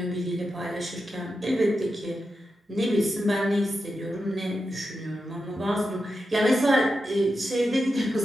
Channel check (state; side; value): normal; both; correlation 0.89